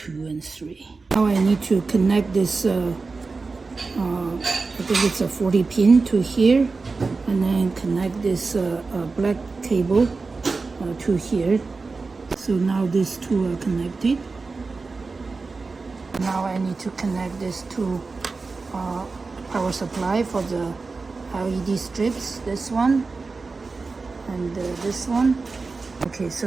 and 3. Now I need to connect this. I think it's a 40 pin to here, and then connect this black cable to here. So now these 2 are connected. Now I need to connect this to power supply for the LED strips, this one and this one. Okay,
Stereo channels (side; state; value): left; quieter; 4.1 dB